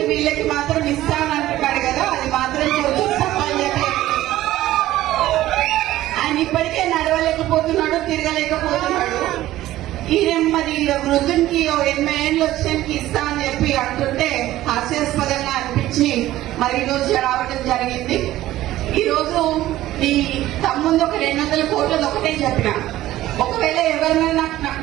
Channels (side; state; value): left; quieter; 15.0 dB